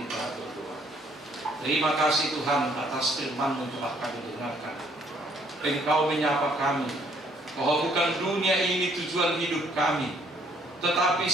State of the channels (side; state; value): both; normal; correlation 0.65